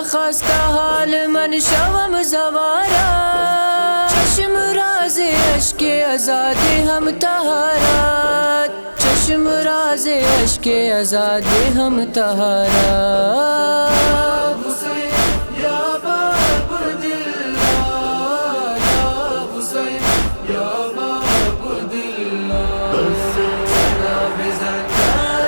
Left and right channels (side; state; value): both; inverted; correlation -1.00